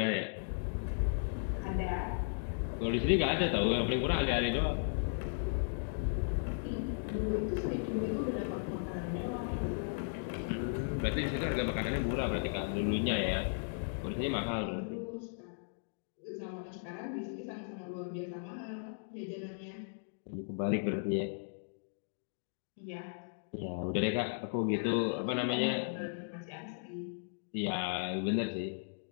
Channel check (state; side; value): silent; right; digital silence